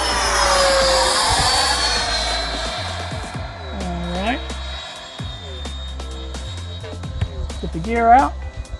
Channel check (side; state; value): both; identical; correlation 1.00